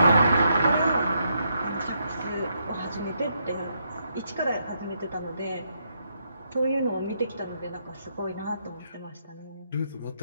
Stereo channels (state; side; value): inverted; both; correlation -0.78